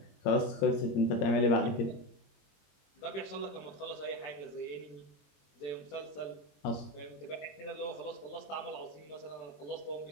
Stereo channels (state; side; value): late; right; 21 ms